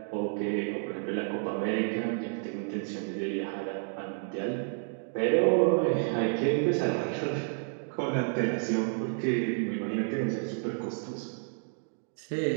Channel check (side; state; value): left; silent; 57 dB below the other